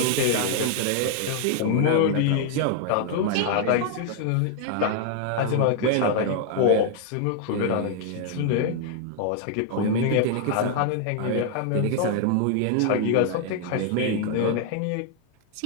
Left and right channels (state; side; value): different; both; correlation 0.00